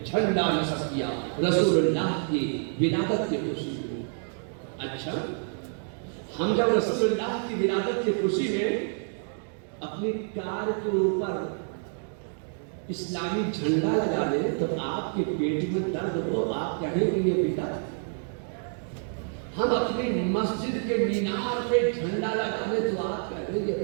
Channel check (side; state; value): left; silent; 59 dB below the other